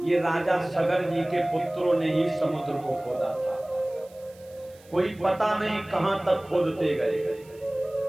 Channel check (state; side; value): noise; right; hiss, 27 dB below the sound